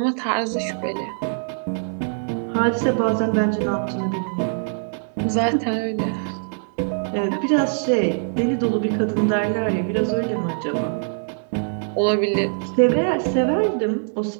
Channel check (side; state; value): left; silent; digital silence